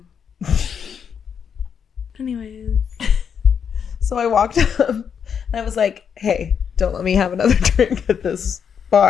Anyways. So I walked up and I was like, hey, don't let me have another drink at this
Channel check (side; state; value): right; quieter; 7.4 dB